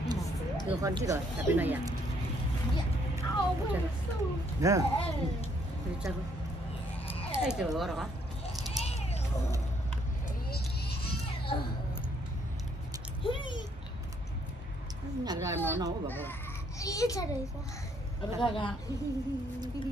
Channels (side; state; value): both; normal; correlation 0.68